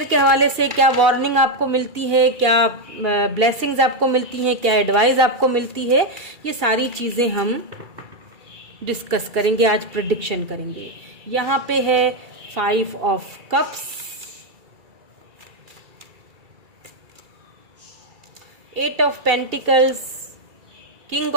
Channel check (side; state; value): left; late; 2.3 ms